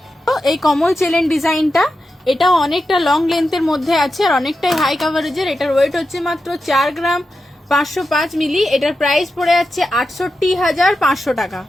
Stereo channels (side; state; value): both; normal; correlation 0.90